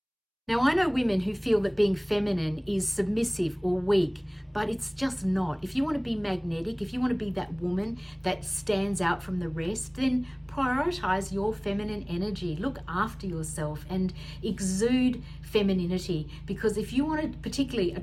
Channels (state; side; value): identical; both; correlation 1.00